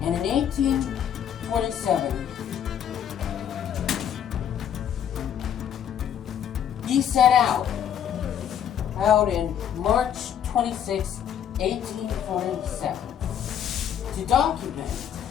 And in 1847, he set out in March 26, 1847, to document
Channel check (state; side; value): quieter; right; 9.2 dB